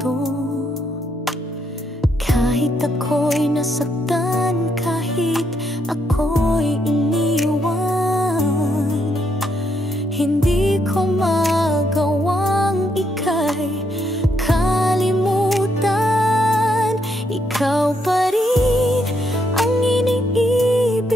Kahit ako'y nasaktan, kahit ako'y iniwan, hindi ko magawang ika'y kalimutan. Ikaw pa rin ang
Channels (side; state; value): both; normal; correlation 0.76